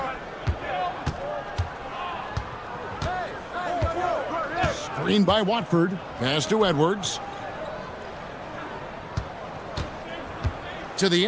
Screen by Watford. Pass to Edwards. To the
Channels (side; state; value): both; identical; correlation 1.00